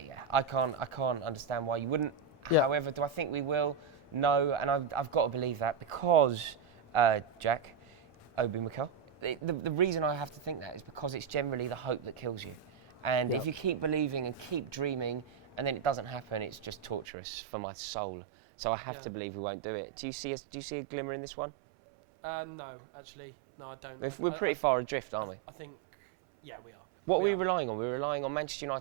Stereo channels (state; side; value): drops out; left; at 17.1 s